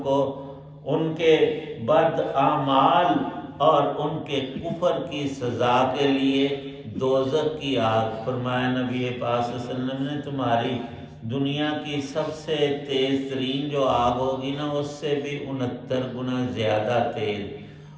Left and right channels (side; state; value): both; identical; correlation 1.00